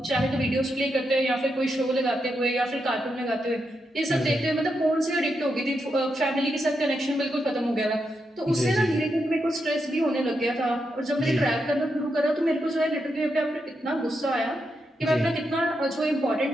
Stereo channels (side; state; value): both; normal; correlation 0.84